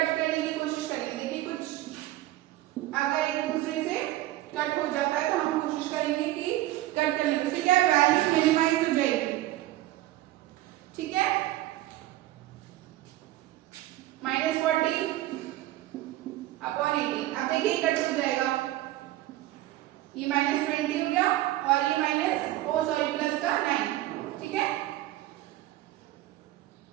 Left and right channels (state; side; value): quieter; left; 15.8 dB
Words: करने की कोशिश करेंगे। देखिए कुछ अगर एक दूसरे से कट हो जाता है तो हम कोशिश करेंगे कि कट कर लें, उससे क्या वैल्यू मिनिमाइज हो जाएगी। ठीक है। -40/18। अब देखिए कट हो जाएगा, ये -20 हो गया और ये प्लस का 9। ठीक है।